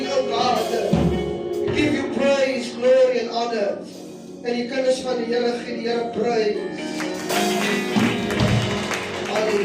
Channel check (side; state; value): both; identical; correlation 1.00